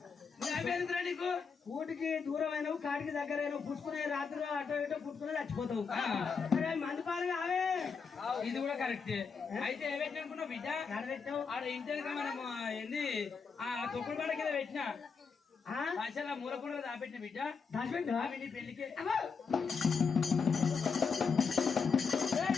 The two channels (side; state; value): right; quieter; 5.5 dB